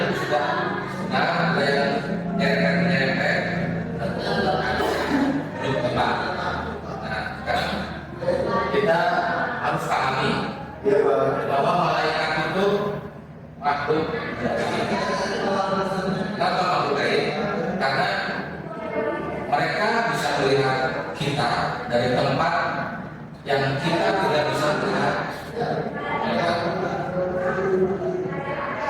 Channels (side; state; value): both; identical; correlation 1.00